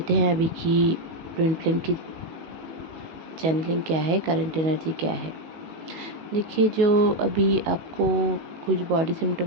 हैं अभी की ट्विन फ्लेम की चैनलिंग क्या है, करंट एनर्जी क्या है। देखिए, जो अभी आपको कुछ बॉडी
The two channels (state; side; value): late; left; 18 ms